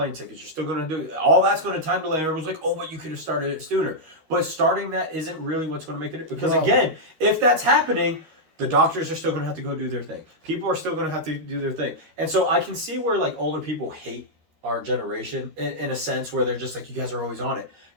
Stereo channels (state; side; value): late; left; 13 ms